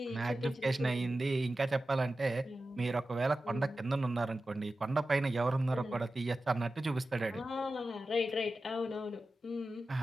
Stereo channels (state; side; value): normal; both; correlation 0.93